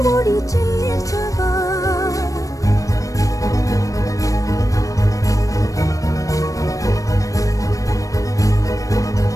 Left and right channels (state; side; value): late; right; 0.16 ms